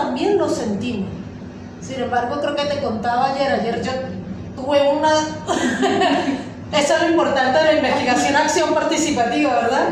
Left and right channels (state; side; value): identical; both; correlation 1.00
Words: lo sentimos. Sin embargo, creo que te contaba ayer yo tuve una... Eso es lo importante de la investigación acción participativa, ¿verdad?